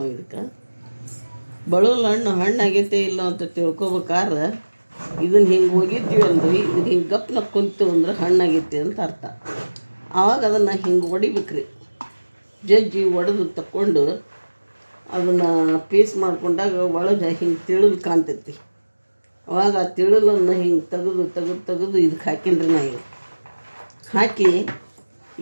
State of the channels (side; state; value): both; inverted; correlation -1.00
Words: ಇದಕ್ಕೆ. ಬಳುಲ್ ಹಣ್ಣು ಆಗೈತೆ ಇಲ್ಲ ಅಂತ ತಿಳ್ಕೊಬೇಕಾದ್ರೆ ಇದನ್ನು ಹಿಂಗೆ ಒಗಿತೀವಿ ಅಂದ್ರೆ ಇದು ಹಿಂಗೆ ಗಪ್ನ ಕುಂತೀವಿ ಅಂದ್ರೆ ಹಣ್ಣಾಗೈತಿ ಅಂತ ಅರ್ಥ. ಆವಾಗ ಅದನ್ನು ಹಿಂಗೆ ಹೊಡಿಬೇಕ್ರಿ. ಜಜ್ಜಿ ಒಡೆದು ತಕ್ಕೊಂಡು ಅದನ್ನು ಪೀಸ್ ಮಾಡ್ಕೊಂಡಾಗ ಒಳಗೆ ಹಿಂಗೆ ತಿಳಲು ಕಾಣ್ತೈತಿ. ಅವಾಗ ಆ ತಿಳಲನ್ನು ಹಿಂಗೆ ತೆಗೆದು ಇದಕ್ಕೆ ಹಾಕಿನ್ರಿ ನಾ ಈಗ ಹಾಕಿ